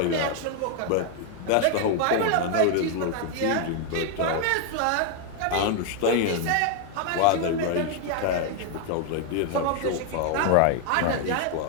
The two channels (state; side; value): different; both; correlation 0.01